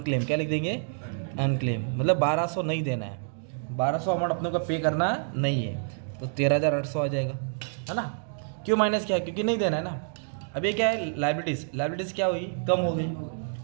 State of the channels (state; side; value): silent; left; digital silence